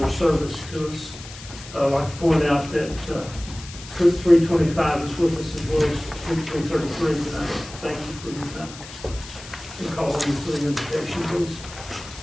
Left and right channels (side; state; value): left; noise; hiss, 15 dB below the sound